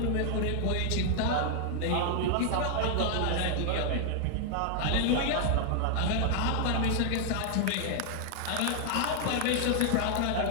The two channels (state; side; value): different; both; correlation 0.00